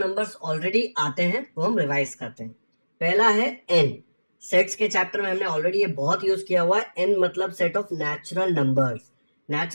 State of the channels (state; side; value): inverted; both; correlation -1.00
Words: ऑलरेडी आते हैं वो हम रिवाइज करते हैं। पहला है एन। सेट्स के चैप्टर में हमने ऑलरेडी ये बहुत यूज किया हुआ है। एन मतलब set of natural numbers.